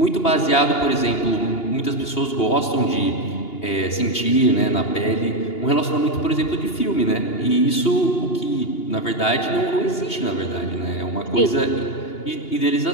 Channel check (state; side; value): late; right; 2.8 ms